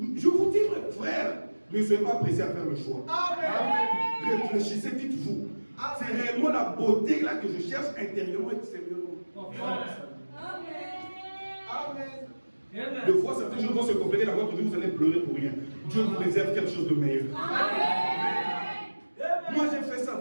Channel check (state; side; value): inverted; both; correlation -1.00